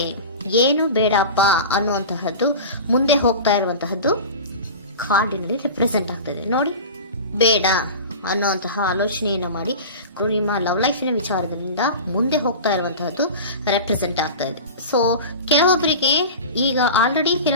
ಏನು ಬೇಡಪ್ಪ ಅನ್ನುವಂತಹದ್ದು ಮುಂದೆ ಹೋಗ್ತಾ ಇರುವಂತಹದ್ದು ಕಾರ್ಡಿನಲ್ಲಿ ರೆಪ್ರೆಸೆಂಟ್ ಆಗ್ತದೆ. ನೋಡಿ, ಬೇಡ ಅನ್ನುವಂತಹ ಆಲೋಚನೆಯನ್ನು ಮಾಡಿ ನಿಮ್ಮ ಲವ್ ಲೈಫಿನ ವಿಚಾರದಿಂದ ಮುಂದೆ ಹೋಗ್ತಾ ಇರುವಂತಹದ್ದು ರೆಪ್ರೆಸೆಂಟ್ ಆಗ್ತಾ ಇದೆ. ಸೊ ಕೆಲವೊಬ್ಬರಿಗೆ ಈಗ ಆಲ್ರೆಡಿ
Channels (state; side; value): inverted; both; correlation -0.32